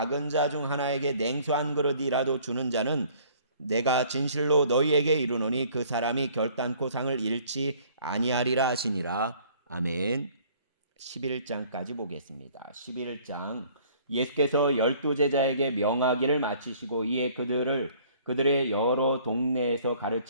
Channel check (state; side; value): inverted; both; correlation -0.56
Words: 자 중 하나에게 냉수 한 그릇이라도 주는 자는 내가 진실로 너희에게 이르노니 그 사람이 결단코 상을 잃지 아니하리라 하시니라. 아멘. 11장까지 보겠습니다. 11장 예수께서 12제자에게 명하기를 마치시고 이에 그들의 여러 동네에서